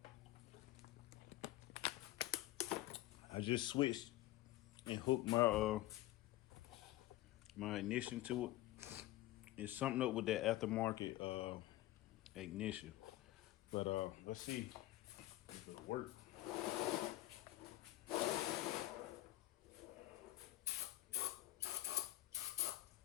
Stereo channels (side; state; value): right; quieter; 16.3 dB